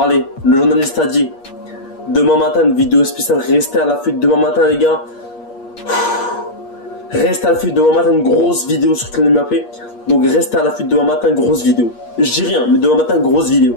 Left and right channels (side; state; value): right; late; 8.5 ms